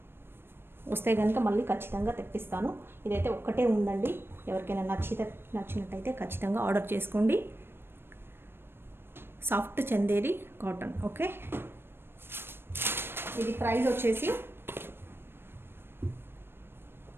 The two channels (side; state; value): left; late; 0.11 ms